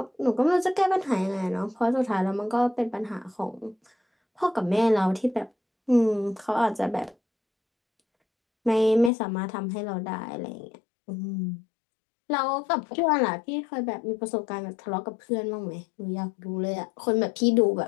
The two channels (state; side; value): drops out; right; at 9.1 s